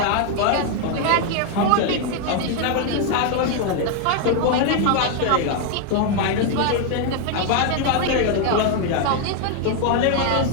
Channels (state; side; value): different; both; correlation 0.01